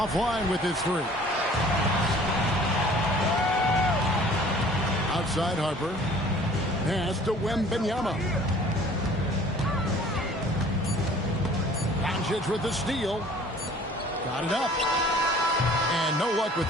with his 3. Outside Harper. Pass to Wembanyama. Doncic with the steal. Got it up. And no luck with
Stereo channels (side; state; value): both; normal; correlation 0.51